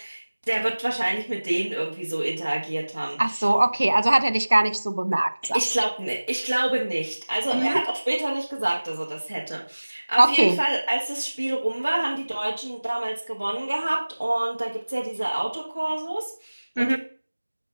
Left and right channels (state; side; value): inverted; both; correlation -1.00